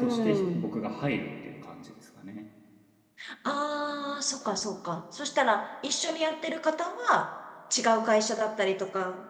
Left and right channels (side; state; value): both; identical; correlation 1.00